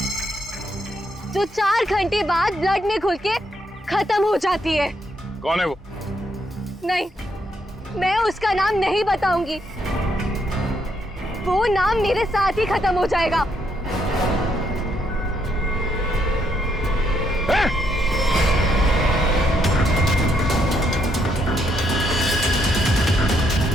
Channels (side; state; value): both; normal; correlation 0.75